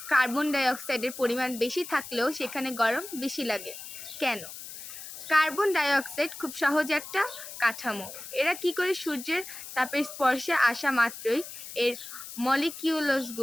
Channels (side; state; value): left; noise; hiss, 12 dB below the sound